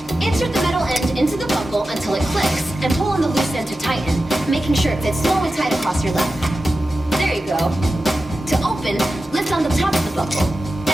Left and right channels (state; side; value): normal; both; correlation 0.93